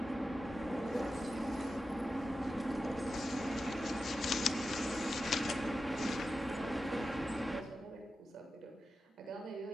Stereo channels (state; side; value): normal; both; correlation 0.91